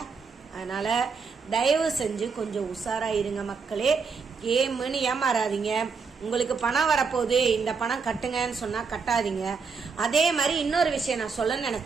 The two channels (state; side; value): quieter; left; 5.2 dB